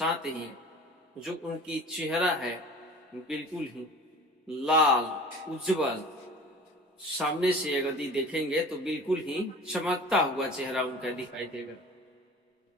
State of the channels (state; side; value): normal; both; correlation 0.41